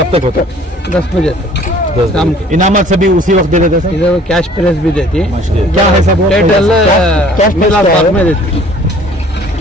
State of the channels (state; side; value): normal; both; correlation 0.53